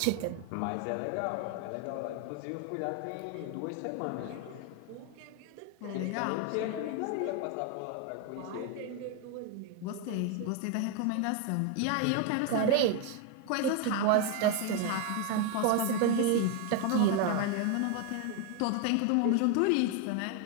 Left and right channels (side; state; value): both; different; correlation 0.01